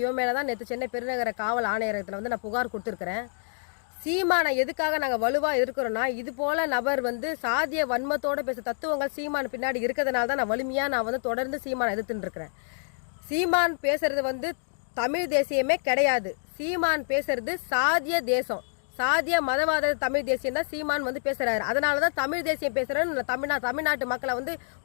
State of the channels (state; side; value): silent; right; digital silence